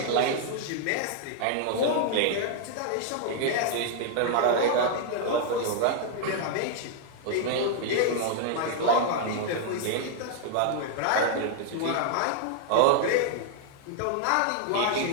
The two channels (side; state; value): both; different; correlation -0.01